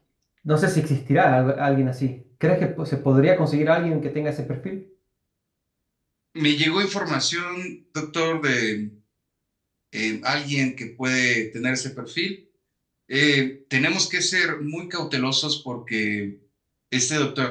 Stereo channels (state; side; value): identical; both; correlation 1.00